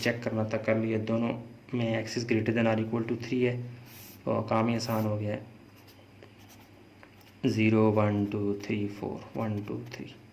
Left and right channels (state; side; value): identical; both; correlation 1.00